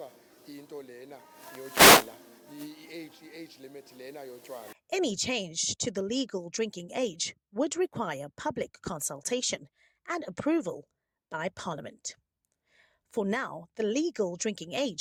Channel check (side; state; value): both; identical; correlation 1.00